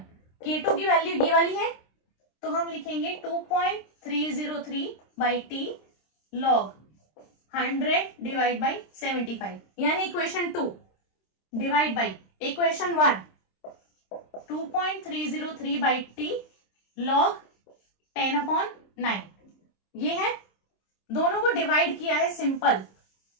K2 की वैल्यू ये वाली है, तो हम लिखेंगे 2.303 by T log 100 divide by 75, यानी equation 2 divide by equation 1 2.303 by T log 10 upon 9। ये है, दोनों को डिवाइड किया है सिंपल।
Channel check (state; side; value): late; right; 26 ms